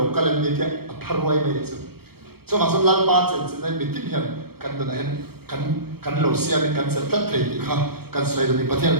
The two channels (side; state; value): left; late; 0.96 ms